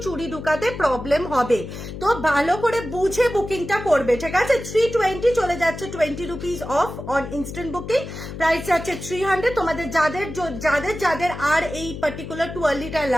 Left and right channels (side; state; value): left; noise; hum, 10 dB below the sound